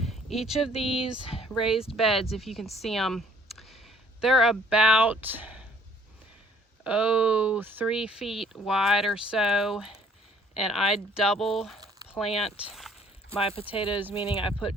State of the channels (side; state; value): both; normal; correlation 0.59